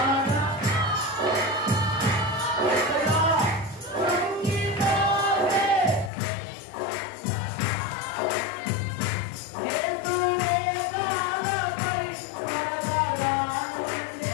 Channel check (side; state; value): right; drops out; at 6.1 s